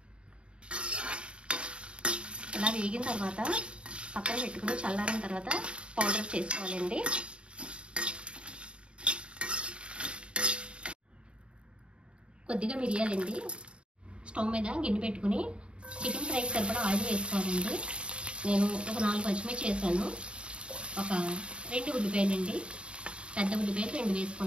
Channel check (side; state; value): left; late; 0.056 ms